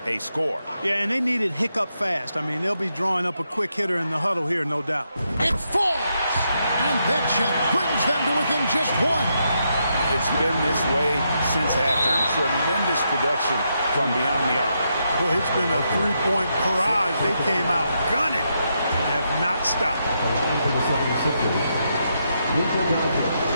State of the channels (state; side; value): inverted; both; correlation -0.81